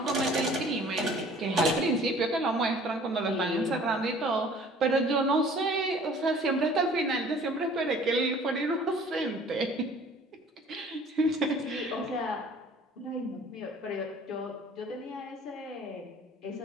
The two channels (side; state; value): both; normal; correlation 0.51